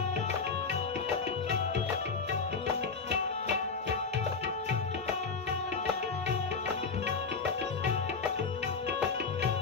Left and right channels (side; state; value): right; quieter; 4.9 dB